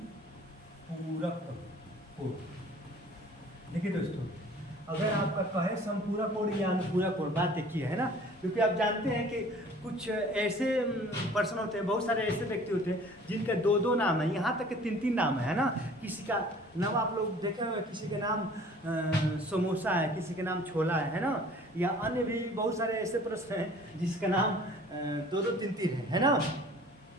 कोण। देखिए दोस्तों अगर आपका कहे समपूरक कोण या अनुपूरक कोण, बात एक ही है ना, क्योंकि आप जानते हैं कि कुछ ऐसे पर्सन होते हैं, बहुत सारे ऐसे व्यक्ति होते हैं जिनके दो दो नाम है, यहाँ तक कि तीन तीन नाम है ना। किसी का नाम आप लोग देखे हुए, किसी के नाम समोसा है, किसी के नाम छोला है ना, या अन्य भी बहुत सारे ऐसे प्रश्न हैं जिसका नाम दो दो तीन तीन है ना,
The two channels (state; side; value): normal; both; correlation 0.50